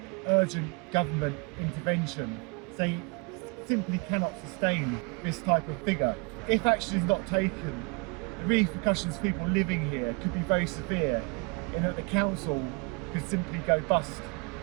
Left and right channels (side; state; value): left; quieter; 30.3 dB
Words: urgent government intervention. They simply cannot sustain this type of figure. If action is not taken, the repercussions for people living here could be very severe, in that the council could simply go bust